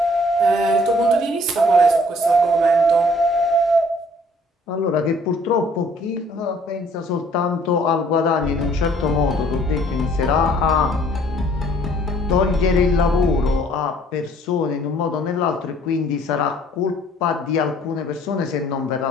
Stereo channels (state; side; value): normal; both; correlation 0.58